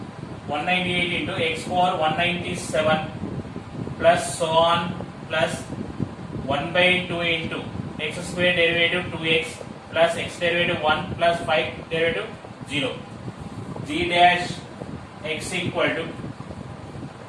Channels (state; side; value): identical; both; correlation 1.00